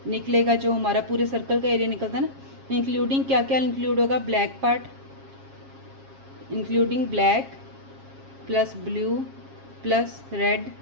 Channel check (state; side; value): late; left; 7.4 ms